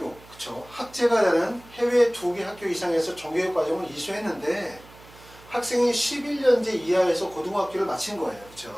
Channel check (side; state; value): right; noise; hum, 23 dB below the sound